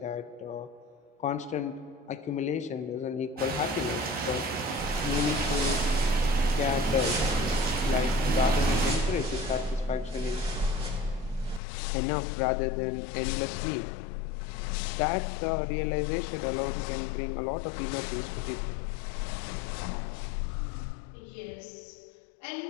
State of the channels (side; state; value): right; drops out; at 11.6 s